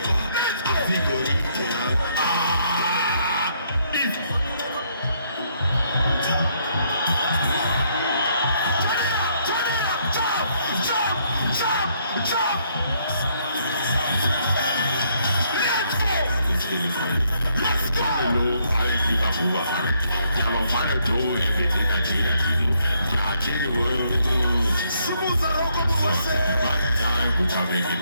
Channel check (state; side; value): inverted; both; correlation -0.71